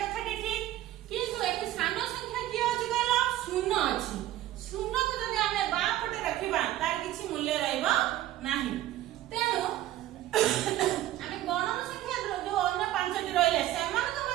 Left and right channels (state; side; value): quieter; left; 14.2 dB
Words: कथाटी ठीक किंतु एठी सान संख्या की अछि कहला 0 अछि 0 को जदि हमें बा पटे रखिबा तार किछि मूल्य रहइबो नाही तेनु हमें गणन संख्या जो अन्य पांचटी रहिले समान के